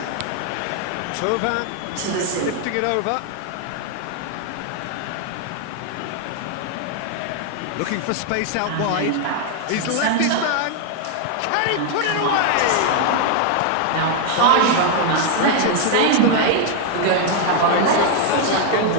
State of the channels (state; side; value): different; both; correlation 0.00